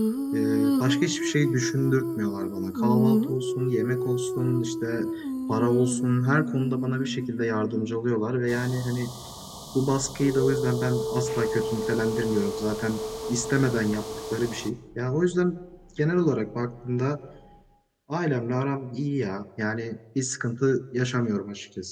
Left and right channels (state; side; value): identical; both; correlation 1.00